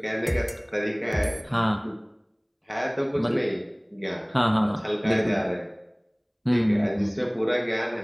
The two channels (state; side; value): identical; both; correlation 1.00